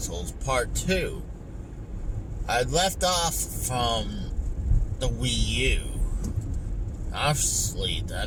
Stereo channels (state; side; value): identical; both; correlation 1.00